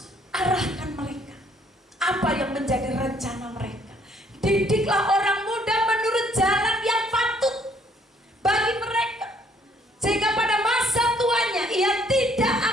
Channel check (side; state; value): both; normal; correlation 0.64